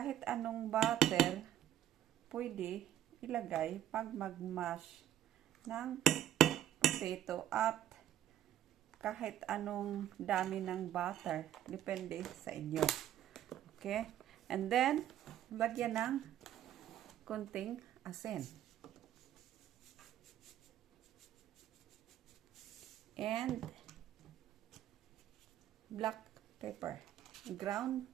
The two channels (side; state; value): left; quieter; 11.6 dB